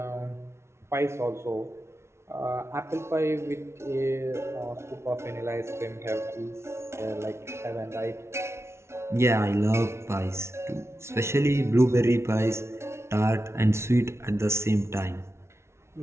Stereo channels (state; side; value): late; left; 0.13 ms